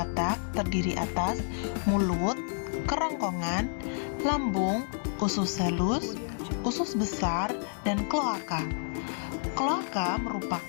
terdiri atas mulut, kerongkongan, lambung, usus halus, usus besar, dan kloaka. Kloaka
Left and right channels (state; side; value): silent; right; digital silence